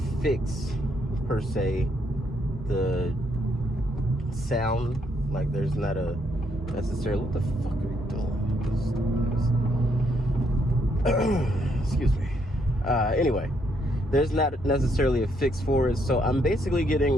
fix per se the sound. Like there's not a necessarily, what the fuck are you doing? Excuse me. Anyway, there's not necessarily a fix for it, so I'm basically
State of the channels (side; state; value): both; normal; correlation 0.73